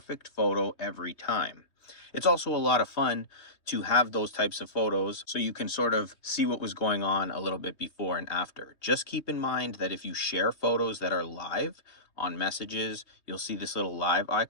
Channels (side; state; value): right; late; 3.2 ms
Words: photo every time. It's also a lot of fun to have those types of photos so you can sort of see what was going on a little bit before and after. Just keep in mind that if you share photos that are live on messages, you'll see this little live